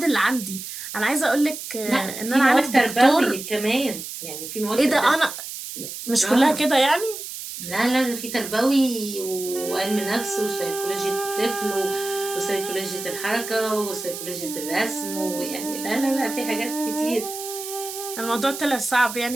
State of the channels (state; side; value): noise; right; hiss, 9 dB below the sound